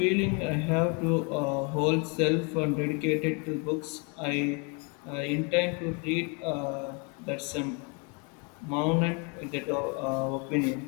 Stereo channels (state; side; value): quieter; right; 32.3 dB